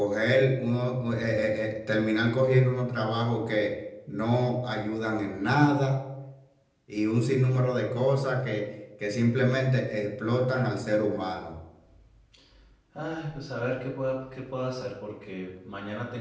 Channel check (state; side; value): identical; both; correlation 1.00